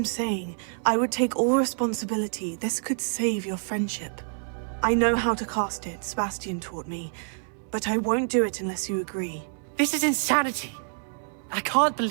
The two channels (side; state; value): left; silent; 60 dB below the other